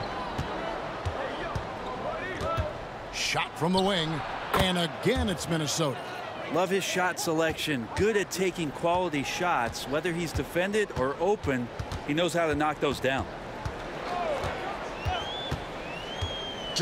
Shot from the wing. And again, it's Minnesota. Love his shot selection. Good at taking quality shots. Whether he's defended or open, He knows how to knock those down.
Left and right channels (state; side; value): identical; both; correlation 1.00